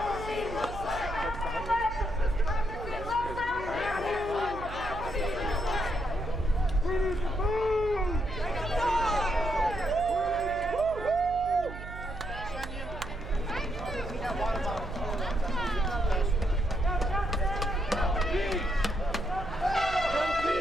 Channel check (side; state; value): right; noise; hum, 11 dB below the sound